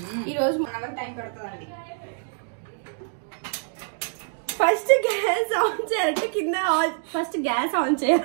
ఈరోజు 1 అవర్ టైం పడుతుందండి. ఫస్ట్ గ్యాస్ ఆన్ చేయాలంటే కింద ఫస్ట్ గ్యాస్ ఆన్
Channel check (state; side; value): silent; left; digital silence